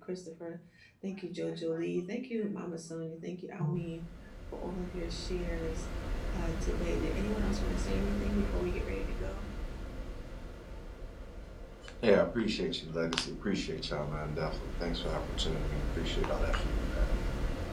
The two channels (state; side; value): identical; both; correlation 1.00